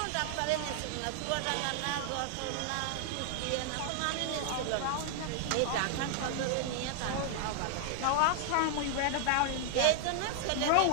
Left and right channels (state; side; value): different; both; correlation 0.00